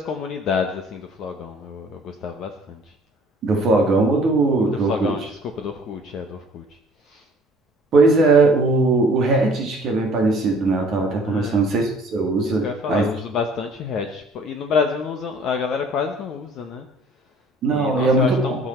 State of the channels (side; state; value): both; normal; correlation 0.54